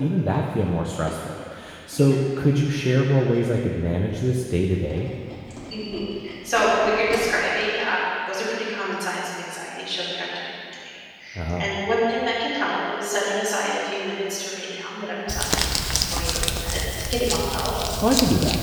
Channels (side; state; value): both; identical; correlation 1.00